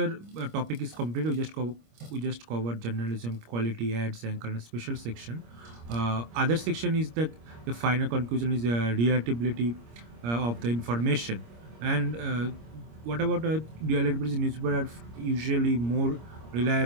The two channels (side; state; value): left; late; 26 ms